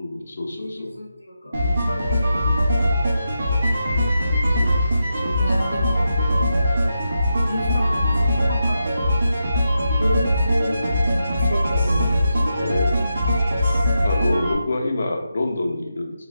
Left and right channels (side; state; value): both; inverted; correlation -0.87